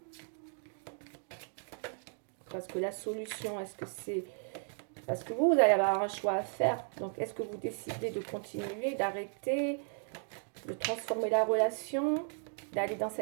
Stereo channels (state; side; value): silent; left; 54 dB below the other